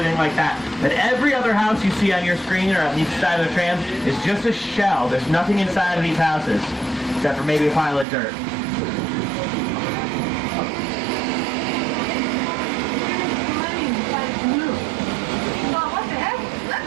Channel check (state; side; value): drops out; left; at 8.1 s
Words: like that. But every other house you see on your screen or on each side of the tram is just a shell. There's nothing inside of these houses, except for maybe a pile of dirt.